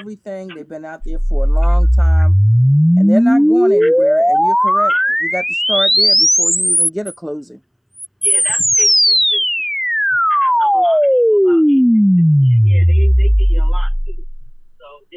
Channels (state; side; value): identical; both; correlation 1.00